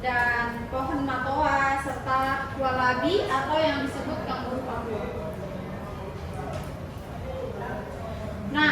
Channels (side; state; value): both; identical; correlation 1.00